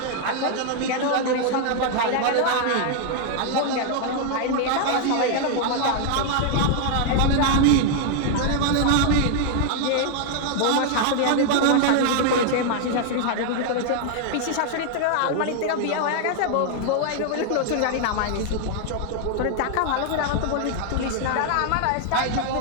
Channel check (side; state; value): both; different; correlation 0.00